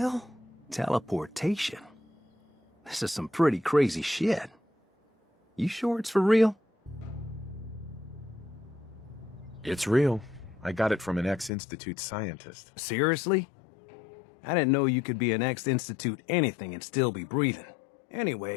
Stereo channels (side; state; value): right; drops out; at 11.5 s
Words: Teleportation. This is some pretty crazy shit. You sure it's for real? It's real. I got it from an ex-Institute scientist. Seriously? I didn't know you could be an ex-Institute anything and still be breathing.